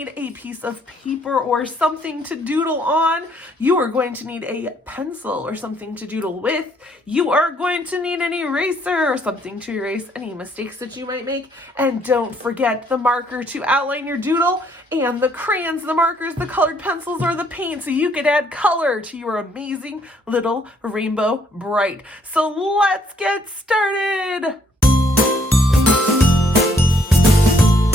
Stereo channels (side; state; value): both; normal; correlation 0.67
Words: a piece of paper or something to doodle on. You are going to need a pencil or something to doodle with. You are going to need an eraser or something to erase any mistakes that you might make. And don't forget the marker to outline your doodle, and the crayons, the markers, the colored pencils, or the paint, so you could add color to your amazing little Rainbow Bright. So let's get started.